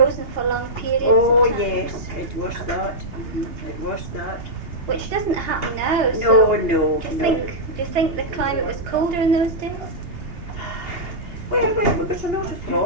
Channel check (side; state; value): left; late; 3.3 ms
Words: for long periods. Oh of time, yes, it was that. It was that. which doesn't happen now. No, so no, do you no. think the climate was colder in those days? Well, we got a lot of